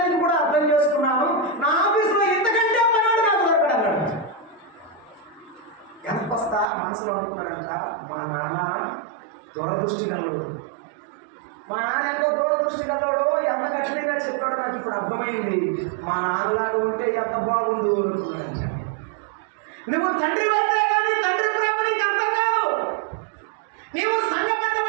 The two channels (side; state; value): left; drops out; at 6.7 s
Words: కూడా అర్థం చేసుకున్నాను. నా ఆఫీసులో ఇంతకంటే పనాడు నాకు దొరకడన్నాడు. ఎంతొస్తా మనసులో అనుకున్నాడంట, మా నాన్న దూరదృష్టి గలడు. మా నాన్న ఎంతో దూరదృష్టి గలడు, ఎంత కఠినంగా చెప్పాడో నాకు ఇప్పుడు అర్థమైంది. మా నాన్నలాగా ఉంటే ఎంత బాగుండు అనుకున్నాడంట. నువ్వు తండ్రి అయితే కానీ తండ్రి ప్రేమ నీకు అర్థం కాదు. నీవు సంఘ